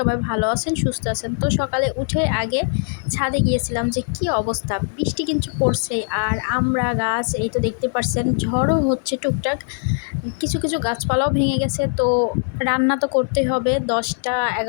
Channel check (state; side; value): silent; right; digital silence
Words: ভালো আছেন, সুস্থ আছেন। তো সকালে উঠে আগে ছাদে গিয়েছিলাম যে কি অবস্থা, বৃষ্টি কিন্তু পড়ছেই। আর আমরা গাছ এই তো দেখতে পাচ্ছেন, ঝড়ও হচ্ছে টুকটাক, কিছু কিছু গাছপালাও ভেঙে গেছে। তো রান্না তো করতে হবে, 10টা